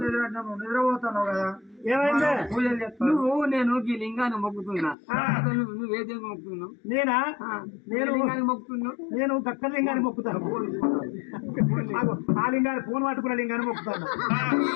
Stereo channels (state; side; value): drops out; right; at 5.0 s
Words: నిద్రపోతాను కదా ఏమైంది పూజలు చెప్తాను నువ్వు నేను ఈ లింగాన్ని మొక్కుతున్నా నువ్వు ఏ దేవుని మొక్కుతున్నావు నేనా నేను లింగాన్ని మొక్కుతున్నావు నేను దక్క లింగాన్ని మొక్కుతాను ఆ లింగాన్ని ఫోన్ పట్టుకున్న లింగాన్ని మొక్కుతాను